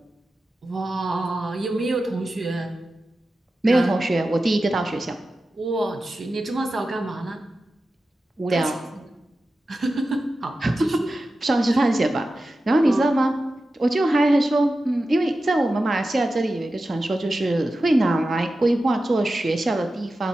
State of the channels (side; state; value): both; normal; correlation 0.93